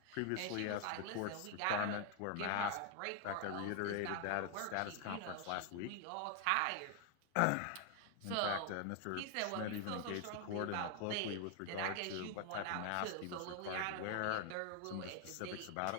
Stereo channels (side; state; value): both; different; correlation 0.00